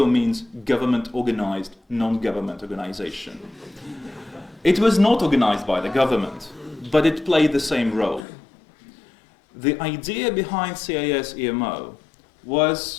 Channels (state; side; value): drops out; right; at 8.2 s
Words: means government-organized, non-government organization. It was not organized by the government, but it played the same role. The idea behind CIS-EMO